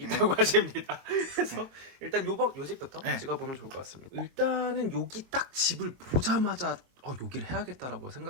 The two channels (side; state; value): left; late; 22 ms